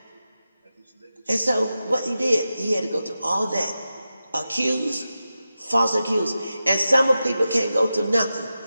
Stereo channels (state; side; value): inverted; both; correlation -0.92